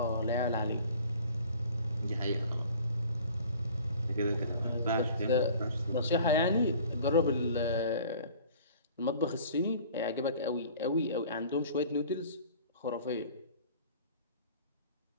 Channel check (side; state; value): both; inverted; correlation -0.48